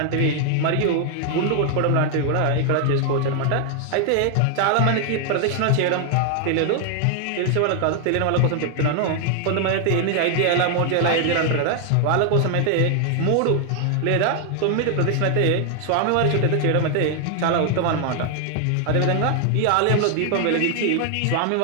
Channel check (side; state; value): both; different; correlation 0.00